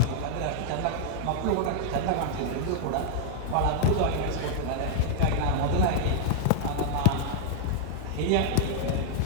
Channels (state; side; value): different; both; correlation -0.01